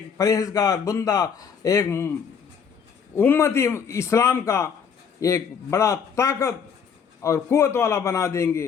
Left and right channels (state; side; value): quieter; right; 6.8 dB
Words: پرہیزگار بندہ، ایک امتی اسلام کا ایک بڑا طاقت اور قوت والا بنا دیں